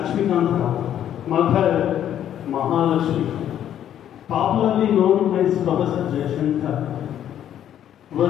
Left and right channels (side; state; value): right; quieter; 10.5 dB